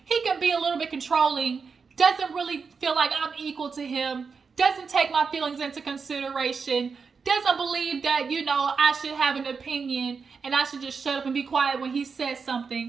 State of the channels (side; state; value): left; quieter; 5.3 dB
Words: He can be a little bit controlling, doesn't really feel like I'm equal to him, doesn't take my feelings into consideration, doesn't believe that, I should have an opinion and I should just shut up and be quiet when he says